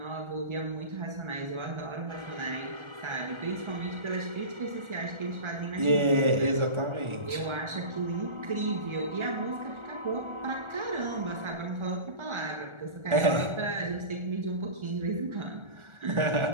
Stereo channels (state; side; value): late; left; 1.4 ms